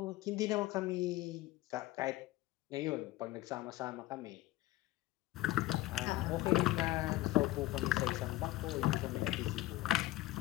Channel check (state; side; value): quieter; right; 17.2 dB